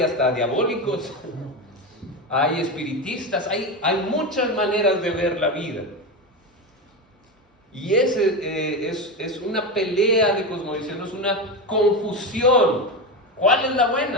hasta diabólicos. Hay espiritistas. Hay muchas maneras de ver la vida. Y es una pelea de cosmovisión, es una confusión. ¿Cuál es la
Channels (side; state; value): both; normal; correlation 0.18